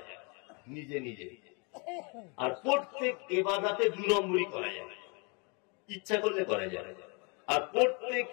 নিজে নিজে, আর প্রত্যেক ইবাদতে 2 নম্বরই করা যায়, ইচ্ছা করলে করা যায়, আর প্রত্যেক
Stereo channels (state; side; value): quieter; right; 32.8 dB